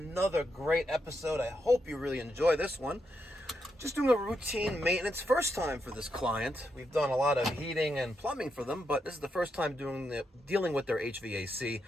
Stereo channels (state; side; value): normal; both; correlation 0.82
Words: great episode. I hope you really enjoy this one. Just doing a routine maintenance, first time for this client. We've done a lot of heating and plumbing for them, but this is the first time dealing with their HVAC,